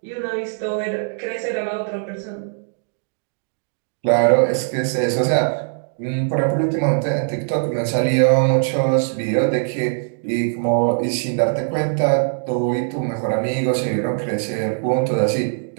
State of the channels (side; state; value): left; silent; digital silence